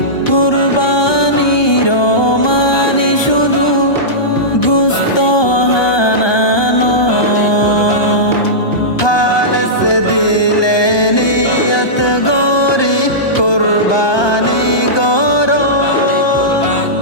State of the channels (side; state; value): right; late; 1.2 ms